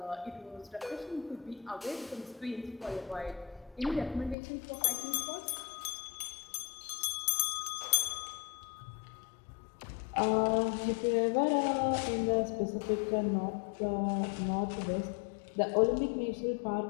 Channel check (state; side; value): drops out; right; at 4.4 s